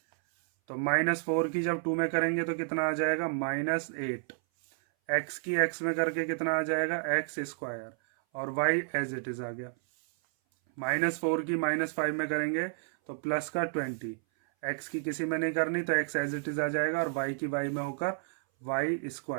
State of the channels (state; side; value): silent; left; 57 dB below the other